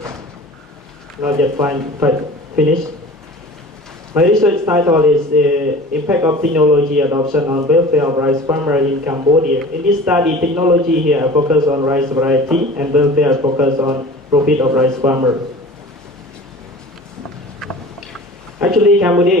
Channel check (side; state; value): both; normal; correlation 0.41